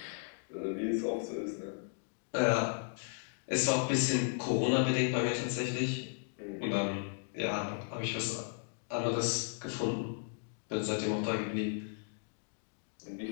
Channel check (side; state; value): right; silent; digital silence